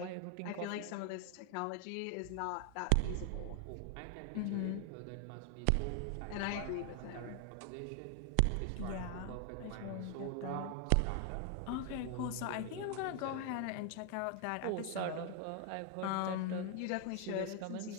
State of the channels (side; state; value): both; different; correlation 0.00